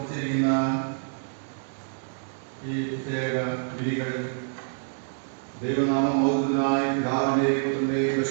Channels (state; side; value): silent; left; digital silence